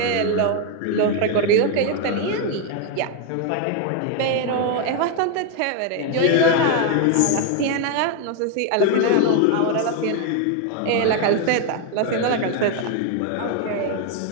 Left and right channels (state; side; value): different; both; correlation 0.01